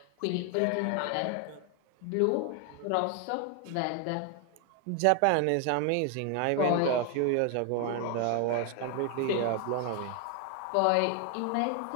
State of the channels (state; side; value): different; both; correlation 0.01